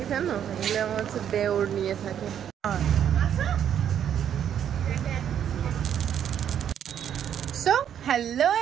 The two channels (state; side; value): quieter; left; 9.4 dB